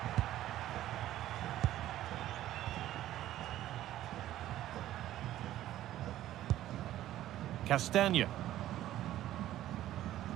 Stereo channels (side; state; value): left; quieter; 13.6 dB